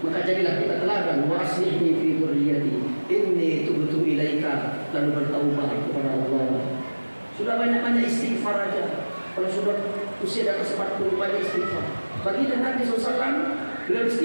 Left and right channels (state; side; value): inverted; both; correlation -1.00